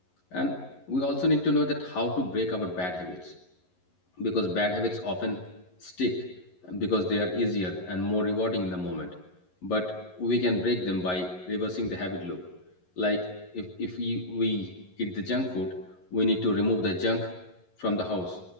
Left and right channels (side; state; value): right; late; 11 ms